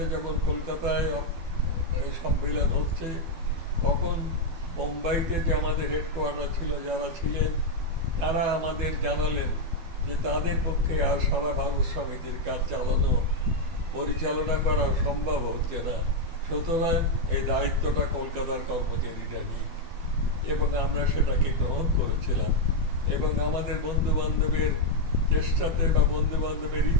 যখন কলকাতায় এই সম্মেলন হচ্ছে, তখন মুম্বাইতে যে আমাদের হেডকোয়ার্টার ছিল, যারা ছিলেন তারা আমাদের জানালেন যে তাদের পক্ষে আর সারা ভারত সমিতির কাজ পরিচালনা করা সম্ভব হচ্ছে না, সুতরাং এই দায়িত্বটা কলকাতার কর্মচারীরা নিই। এবং আমরা সেটাকে গ্রহণ করেছিলাম, এবং আমাদের বন্ধু বান্ধবের চেষ্টাতে বা বন্ধু বান্ধবের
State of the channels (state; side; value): late; left; 12 ms